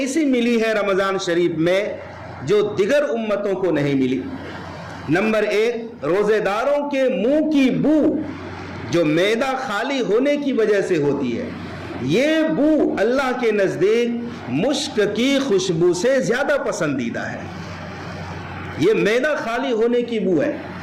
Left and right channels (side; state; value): both; identical; correlation 1.00